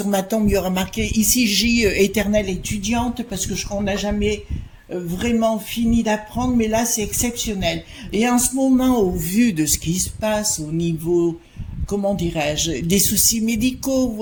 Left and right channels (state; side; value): identical; both; correlation 1.00